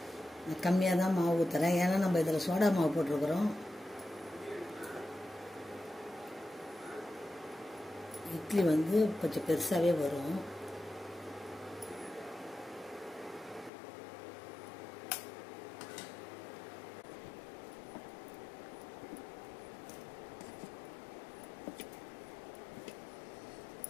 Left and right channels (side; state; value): right; drops out; at 13.7 s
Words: கம்மியாக தான் மாவு ஊற்றுறேன். ஏன்னா நம்ம இதில் சோடா மாவு போட்டிருக்கிறோம். இட்லி வந்து கொஞ்சம் பெருசாகவே வரும்.